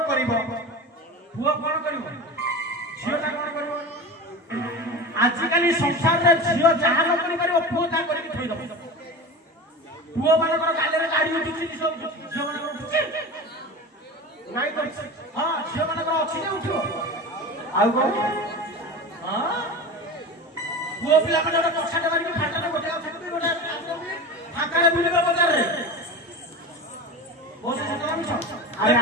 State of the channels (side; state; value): both; normal; correlation 0.30